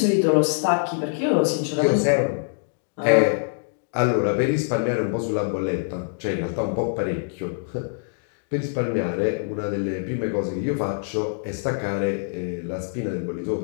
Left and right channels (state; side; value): silent; right; digital silence